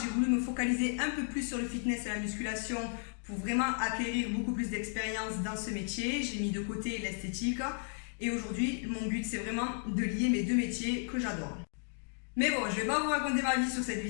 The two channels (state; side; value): silent; right; 55 dB below the other